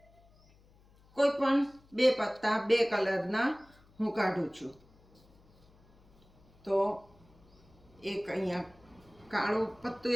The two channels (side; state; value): left; noise; hum, 29 dB below the sound